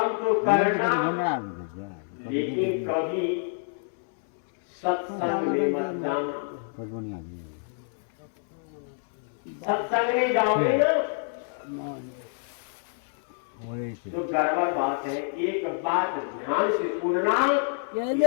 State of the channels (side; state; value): right; silent; 60 dB below the other